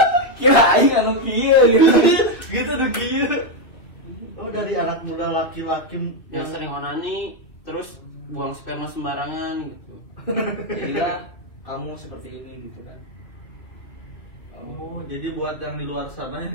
Kira aing anu kieu gitu. Gitu tuh kieu. Oh dari anak muda laki-laki Yang sering onani terus buang sperma sembarangan gitu. Jadilah kamu seperti ini gitu kan. Oh, jadi buat yang di luar sana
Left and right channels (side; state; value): right; late; 2.4 ms